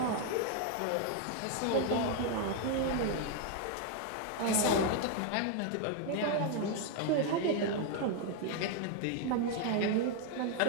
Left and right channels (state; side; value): different; both; correlation 0.00